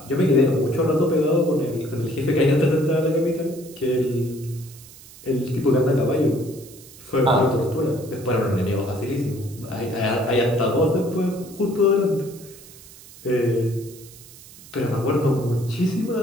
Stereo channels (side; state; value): right; noise; hiss, 20 dB below the sound